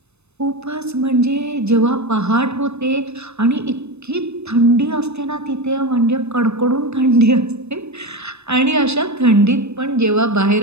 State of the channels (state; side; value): late; left; 0.81 ms